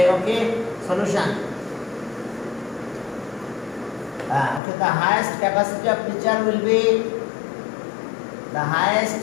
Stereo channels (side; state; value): right; drops out; at 4.6 s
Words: ওকে solution okay, the highest capacity of pitcher will be the highest